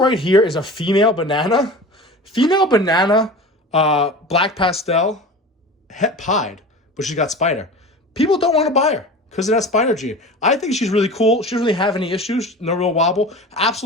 here is a female banana. Female banana, black pastel, het pied, but she's got spider. People don't want to buy her because of that spider gene. I think she's really cool. She doesn't really have any issues, no real wobble.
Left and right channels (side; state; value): both; normal; correlation 0.34